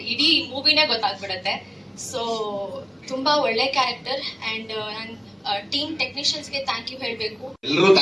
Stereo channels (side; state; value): both; identical; correlation 1.00